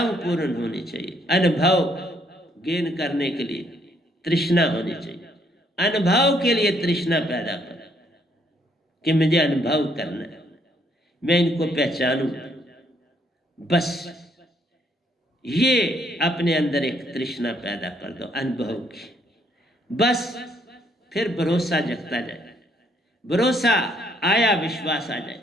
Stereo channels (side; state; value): both; normal; correlation 0.69